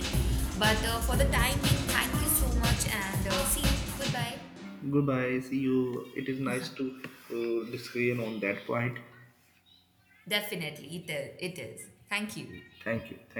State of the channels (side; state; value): both; identical; correlation 1.00